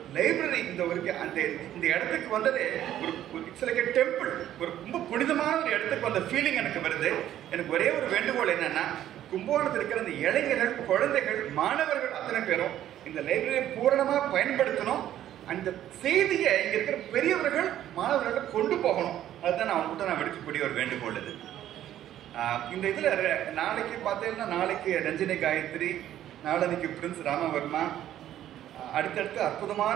லைப்ரரி இந்த இடத்துக்கு வந்ததே ஒரு இட்ஸ் லைக் எ டெம்பிள். ஒரு ரொம்ப புனிதமான ஒரு இடத்துக்கு வந்த ஃபீலிங் எனக்கு வருது. எனக்கு ஒரே ஒரு வேண்டுகோள் என்னன்னா, கும்பகோணத்தில் இருக்கிற அந்த இளைஞர்கள், குழந்தைகள், மாணவர்கள் அத்தனை பேரும் இந்த லைப்ரரியை பூரணமாக பயன்படுத்தணும். அந்த செய்தியை இங்கே இருக்கிற பெரியவர்கள் மாணவர்கள் கொண்டு போகணும். அதுதான் நான் அவங்ககிட்ட விடுக்கக்கூடிய ஒரு வேண்டுகோள் இது. இந்த இதில் நாளைக்கு பார்த்தீங்கன்னா, நாளைக்கு ரஞ்சினி காயத்ரி, நாளன்னைக்கு பிரின்ஸ் ராமவர்மா, அடுத்தடுத்து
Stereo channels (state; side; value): quieter; left; 12.0 dB